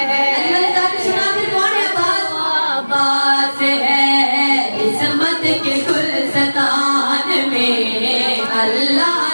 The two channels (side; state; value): both; inverted; correlation -1.00